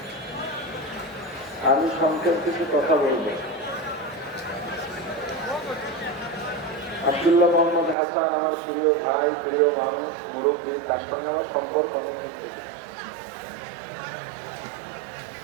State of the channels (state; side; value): drops out; left; at 8.0 s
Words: আমি সংক্ষেপ কিছু কথা বলবো। আব্দুল্লাহ মোহাম্মদ হাসান আমার প্রিয় ভাই, প্রিয় মানুষ, মুরব্বী, তার সঙ্গে আমার সম্পর্ক অনেক থেকে।